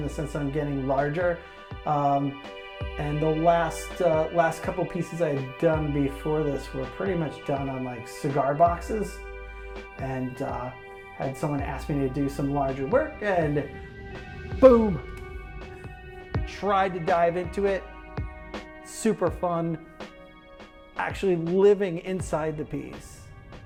the sense that I'm getting larger. And the last couple pieces I had done before this were pretty much done on like cigar boxes, and had someone ask me to do some larger work, and boom, tried to dive into it. Super fun, actually living inside the piece.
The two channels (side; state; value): both; identical; correlation 1.00